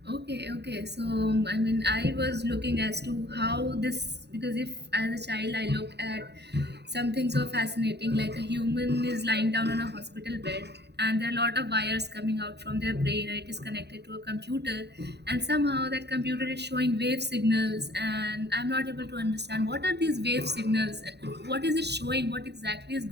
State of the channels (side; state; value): left; late; 0.49 ms